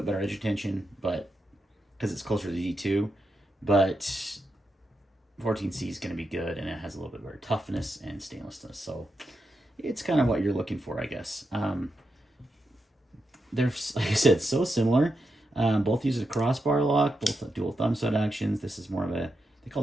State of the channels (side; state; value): both; normal; correlation 0.86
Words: better edge retention, but because it's closer to the D2, but 14C is going to be good, and it has a little bit better toughness and stainlessness. So it's kind of what you're looking for, I guess. They're, like I said, so similar. Both use a crossbar lock, both dual thumb stud actions. This is more of they